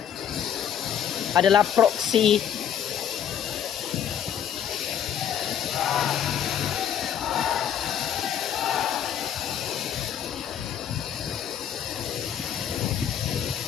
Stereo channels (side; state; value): right; quieter; 9.3 dB